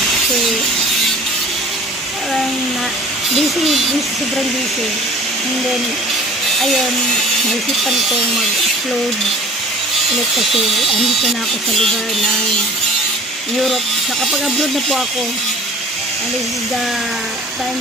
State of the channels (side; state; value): both; normal; correlation 0.46